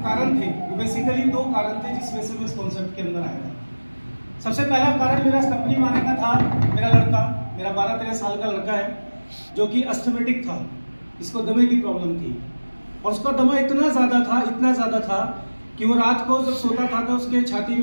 कारण थे वो बेसिकली 2 कारण थे जिस वजह से मैं इस कॉन्सेप्ट के अंदर आया था। सबसे पहला कारण मेरा इस कंपनी में आने का था, मेरा लड़का, मेरा 12-13 साल का लड़का है जो कि अस्थमेटिक था, इसको दमे की प्रॉब्लम थी और उसका दमा इतना ज़्यादा था कि वो रात को जब सोता था तो उसके छाती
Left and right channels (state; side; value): inverted; both; correlation -1.00